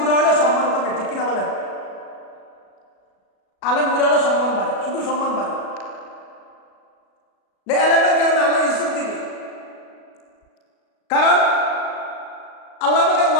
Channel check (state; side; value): late; right; 37 ms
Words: হলে সম্মান কমে। ঠিক কিনা বলেন? আলেম বুড়া হলে সম্মান বাড়ে, শুধু সম্মান বাড়ে। আলেমের কারণে আল্লাহ ইজ্জত দিবে, কারণ আল্লাহ পাকের